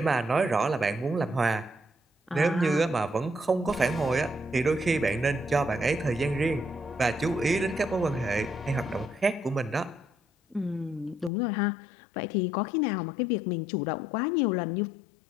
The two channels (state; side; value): drops out; right; at 11.3 s